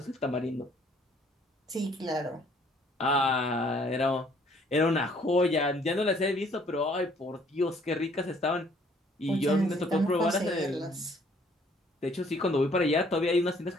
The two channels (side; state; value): both; normal; correlation 0.61